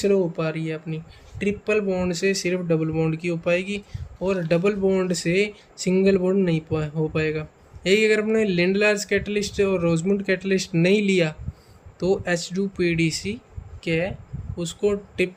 हो पा रही है अपनी, ट्रिपल बॉन्ड से सिर्फ डबल बॉन्ड की हो पाएगी, और डबल बॉन्ड से सिंगल बॉन्ड नहीं हो पाएगा। यही अगर अपने लिंड लार्ज कैटलिस्ट और रोजमुंड कैटलिस्ट नहीं लिया तो H2PDC क्या उसको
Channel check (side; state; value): both; identical; correlation 1.00